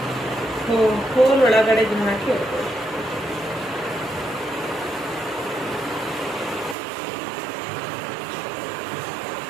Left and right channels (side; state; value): left; drops out; at 6.8 s